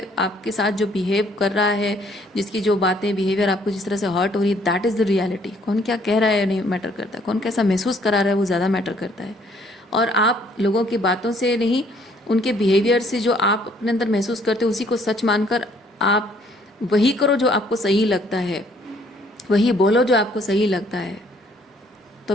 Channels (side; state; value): both; normal; correlation 0.63